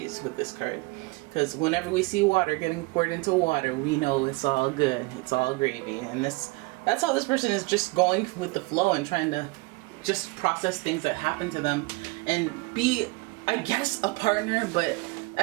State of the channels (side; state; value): left; quieter; 24.9 dB